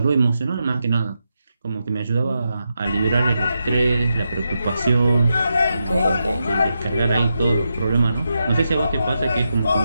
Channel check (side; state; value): both; inverted; correlation -0.87